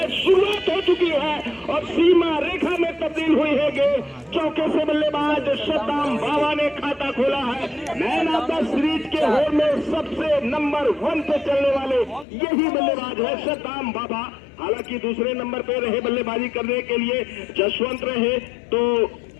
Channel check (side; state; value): right; drops out; at 12.2 s